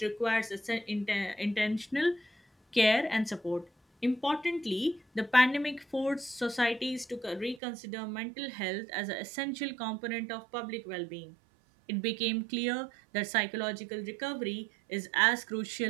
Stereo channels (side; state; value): left; drops out; at 7.6 s